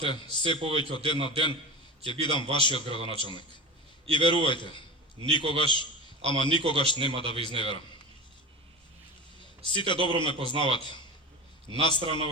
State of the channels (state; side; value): normal; both; correlation 0.30